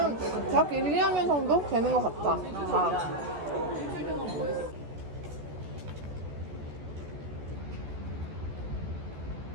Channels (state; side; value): late; left; 14 ms